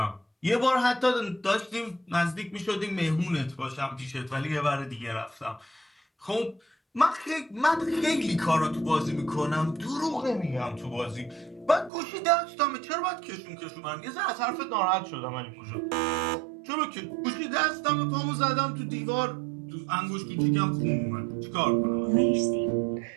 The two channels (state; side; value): drops out; left; at 11.9 s